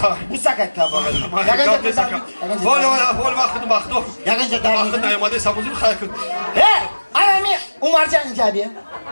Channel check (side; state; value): both; inverted; correlation -1.00